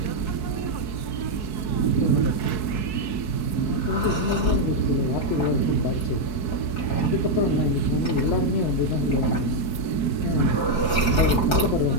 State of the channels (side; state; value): right; late; 4.6 ms